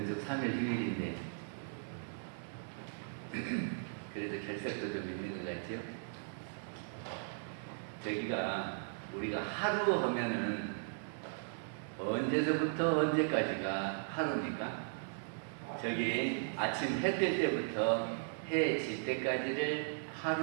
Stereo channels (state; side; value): silent; left; digital silence